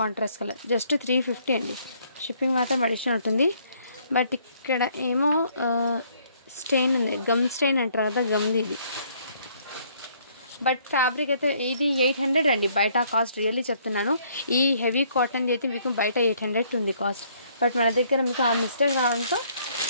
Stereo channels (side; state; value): both; inverted; correlation -0.65